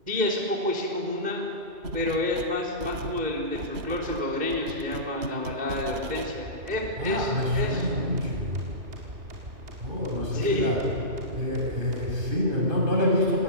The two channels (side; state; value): left; late; 3.0 ms